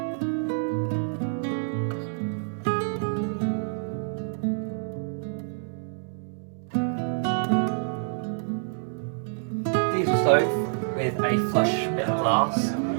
Diesel stove with a flush bit of glass,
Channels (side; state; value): left; silent; digital silence